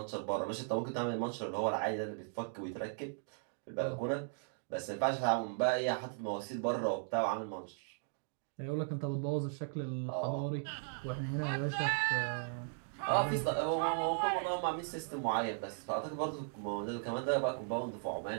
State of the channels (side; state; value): left; silent; digital silence